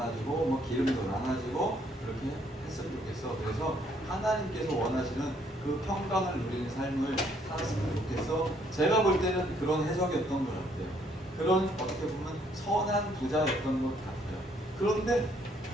뭐 기름도 나눠주고 그렇게 했으면 좋겠어. 그래서 하나님께서 원하시는 그 평강을 누리는 삶을 살았으면 좋겠어. 제가 볼 때는 그런 해석이었던 것 같아요. 그런 어떻게 보면 선한 부자였던 것 같아요. 그런데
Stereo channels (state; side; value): normal; both; correlation 0.67